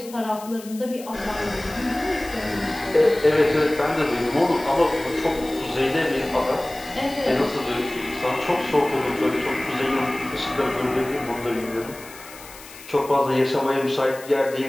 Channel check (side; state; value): left; noise; hiss, 18 dB below the sound